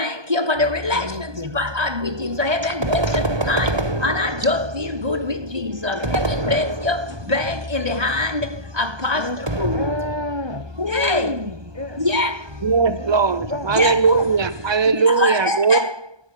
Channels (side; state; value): left; late; 1.2 ms